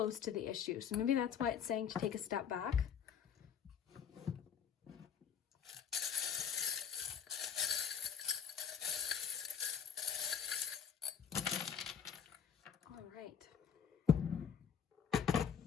to the issue. So maybe that's why it's saying to take a step back. All right.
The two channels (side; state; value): right; quieter; 7.7 dB